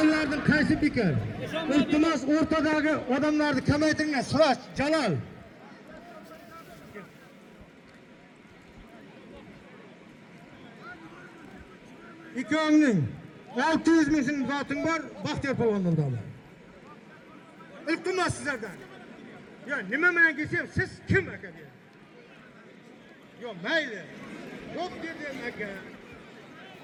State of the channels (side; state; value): both; identical; correlation 1.00